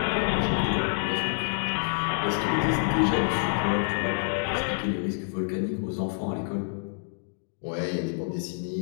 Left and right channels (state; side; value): silent; right; digital silence